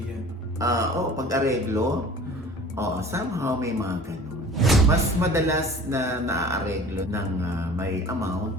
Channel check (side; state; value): both; normal; correlation 0.44